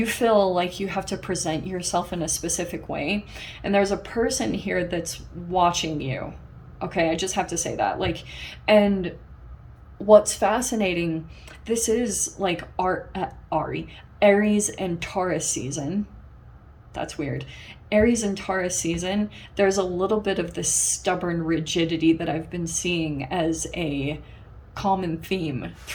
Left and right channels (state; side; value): identical; both; correlation 1.00